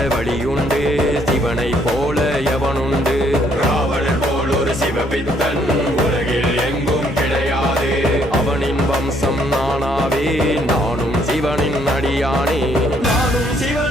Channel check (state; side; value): normal; both; correlation 0.68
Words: வழியுண்டு, சிவனை போல எவனுண்டு? ராவணன் போல் ஒரு சிவபித்தன் உலகில் எங்கும் கிடையாது. அவனின் வம்சம் நானாவே, நானும் சிவனின் அடியானே, நானும்